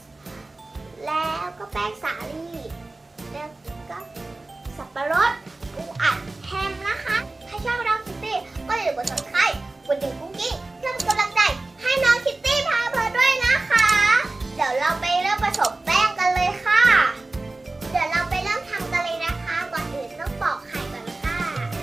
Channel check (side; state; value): left; quieter; 3.1 dB